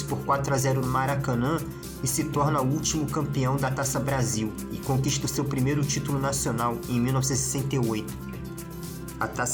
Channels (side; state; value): both; identical; correlation 1.00